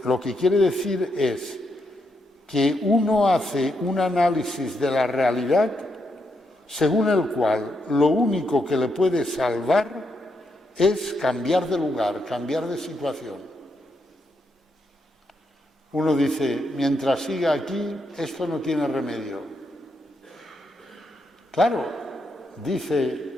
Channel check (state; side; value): normal; both; correlation 0.80